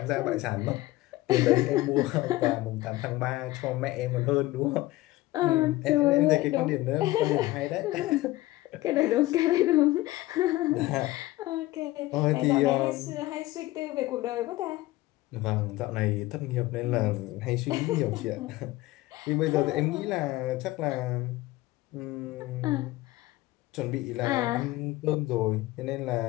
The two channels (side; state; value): right; quieter; 18.0 dB